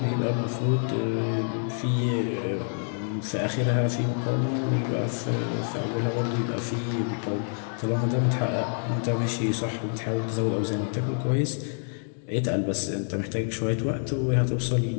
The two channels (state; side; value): silent; right; 60 dB below the other